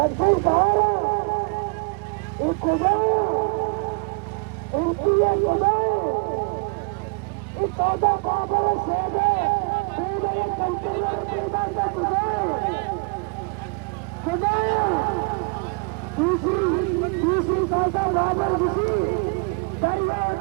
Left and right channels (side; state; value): left; quieter; 33.1 dB